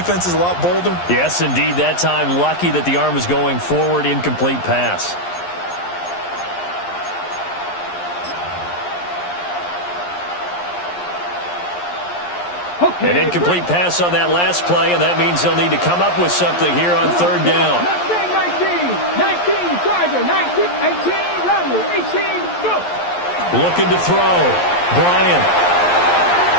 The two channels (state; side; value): late; right; 11 ms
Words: a lot bolder? Yes, indeed. That time, lucky that the arm was going forward, incomplete pass. An incomplete pass on that last play, and that means they'll need to come up with something here on 3rd down. 19, Charger, 19, 18, Rumble, 18, go. Looking to throw. Bryant.